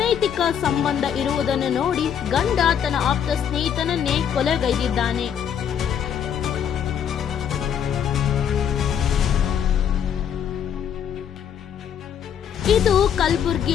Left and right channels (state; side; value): quieter; right; 8.6 dB